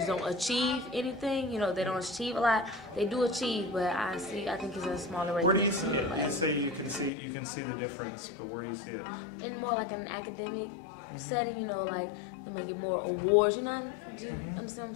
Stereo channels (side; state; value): right; drops out; at 7.1 s